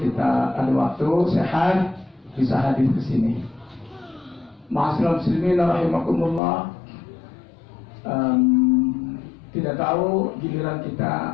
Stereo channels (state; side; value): drops out; right; at 6.4 s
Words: kita ada waktu sehat bisa hadir ke sini. Ma'asyiral muslimin rahimakumullah. Tidak tahu giliran